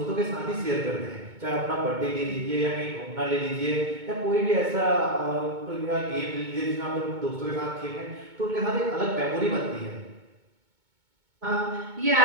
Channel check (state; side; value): late; left; 2.2 ms